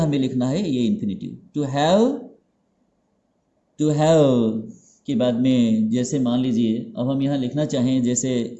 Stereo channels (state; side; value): identical; both; correlation 1.00